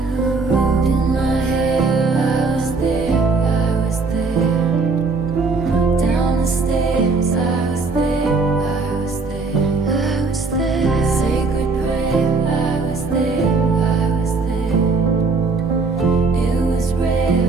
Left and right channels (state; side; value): quieter; left; 4.1 dB